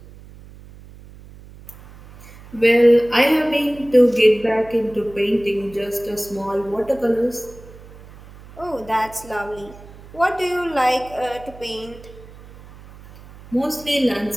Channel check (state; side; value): noise; right; hum, 20 dB below the sound